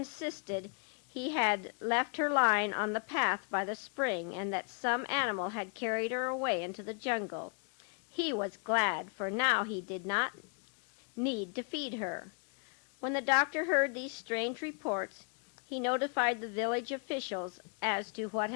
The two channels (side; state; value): right; quieter; 38.8 dB